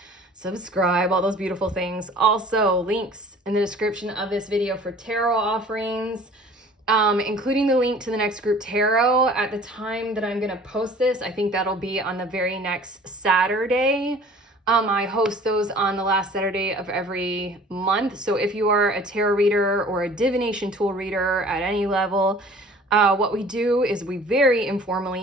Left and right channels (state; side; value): normal; both; correlation 0.48